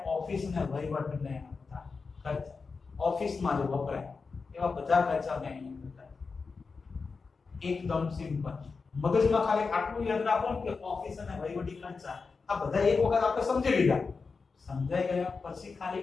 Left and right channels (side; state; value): right; quieter; 4.7 dB